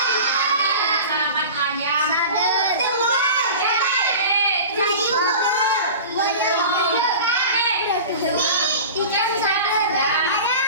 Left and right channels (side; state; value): both; inverted; correlation -0.35